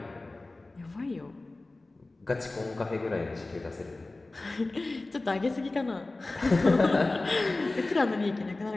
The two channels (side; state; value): right; quieter; 3.1 dB